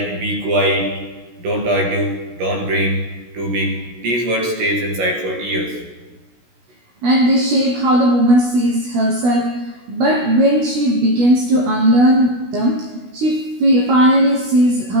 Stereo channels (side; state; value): left; late; 16 ms